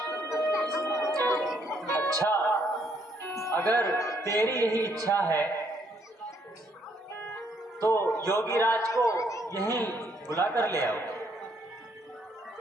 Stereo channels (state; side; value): normal; both; correlation 0.70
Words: अच्छा, अगर तेरी यही इच्छा है तो योगी राज को यहीं बुला कर ले आओ।